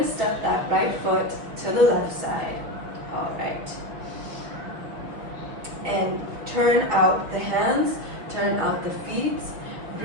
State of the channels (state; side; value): late; left; 6.2 ms